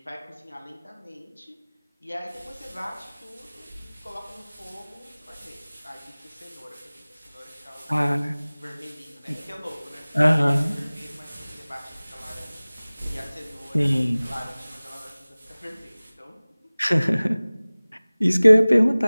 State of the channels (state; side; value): inverted; both; correlation -0.99